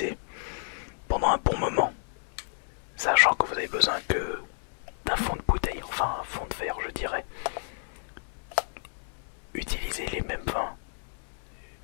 pendant un bon moment, sachant que vous avez besoin que d'un fond de bouteille, enfin un fond de verre je dirais. Utilisez les mêmes vins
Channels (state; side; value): silent; right; digital silence